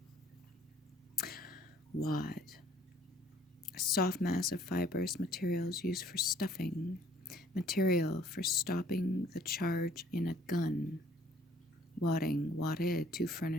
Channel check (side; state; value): both; normal; correlation 0.58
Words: Wad. A soft mass of fibrous materials used for stuffing. Material for stopping the charge in a gun. Wadding, wadded, to